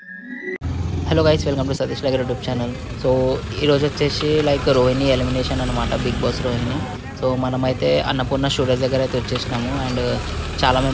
Hello guys, welcome to Satish vlogger YouTube channel. So ఈరోజు వచ్చేసి రోహిణి ఎలిమినేషన్ అనమాట, బిగ్ బాస్ రోహిణి. సో మనమైతే అన్నపూర్ణ స్టూడియోస్ దగ్గర అయితే వచ్చేసినాము అండ్ చాలా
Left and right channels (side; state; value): both; identical; correlation 1.00